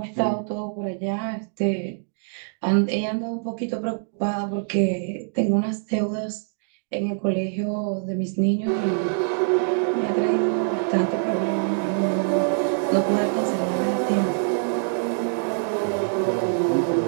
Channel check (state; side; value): silent; left; 61 dB below the other